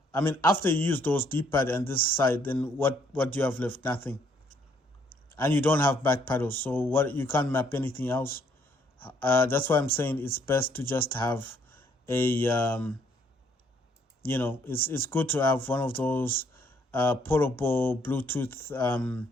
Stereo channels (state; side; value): normal; both; correlation 0.67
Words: I mean, after you use those D-pad and this side, then what do you have left? Nothing. And you don't have back paddles, so you can't map anything else. That's why I'm saying it's best to just have a, it's good to have one of those portable Bluetooth